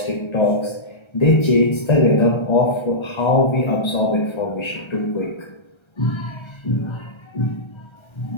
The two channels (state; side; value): late; right; 1.3 ms